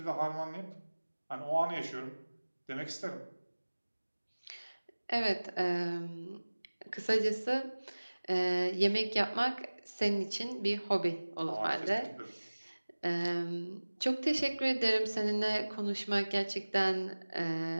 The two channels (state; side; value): inverted; both; correlation -1.00